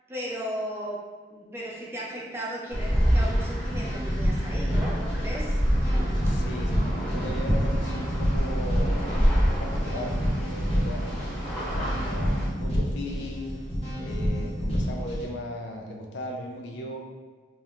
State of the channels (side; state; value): both; normal; correlation 0.89